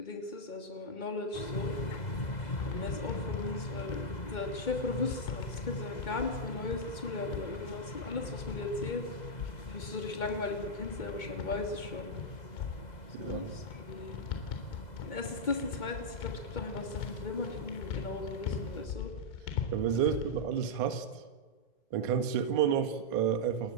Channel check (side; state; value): right; late; 2.2 ms